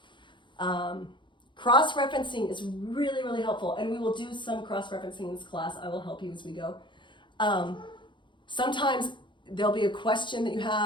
Cross-referencing is really, really helpful, and we will do some cross-referencing in this class. I will help you as we go. Sometimes there'll be a question that you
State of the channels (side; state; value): right; late; 0.23 ms